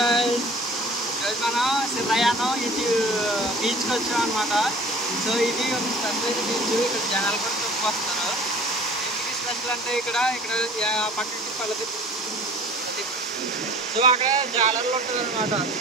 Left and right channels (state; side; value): normal; both; correlation 0.47